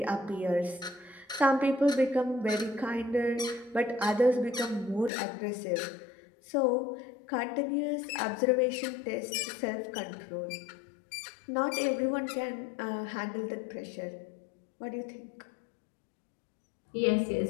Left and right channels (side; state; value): right; drops out; at 5.1 s